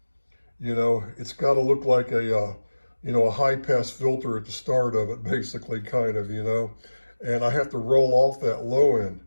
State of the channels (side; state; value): both; inverted; correlation -1.00